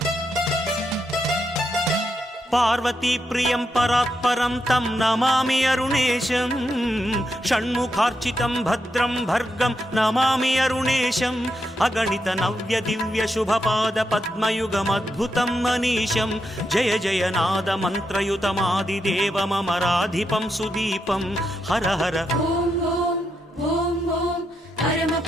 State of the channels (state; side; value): normal; both; correlation 0.83